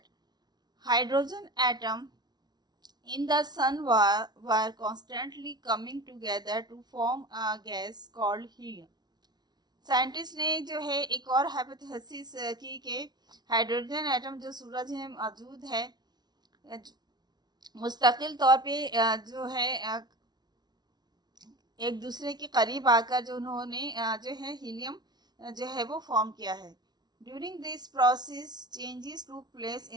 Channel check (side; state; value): left; late; 0.20 ms